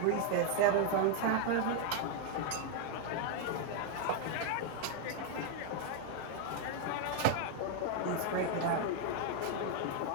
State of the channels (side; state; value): both; different; correlation 0.00